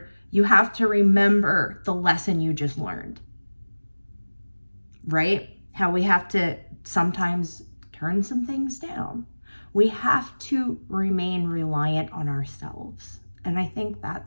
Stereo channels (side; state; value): both; inverted; correlation -1.00